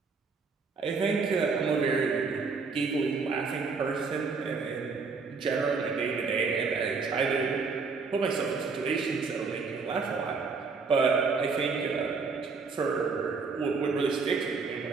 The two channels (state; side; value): quieter; left; 4.7 dB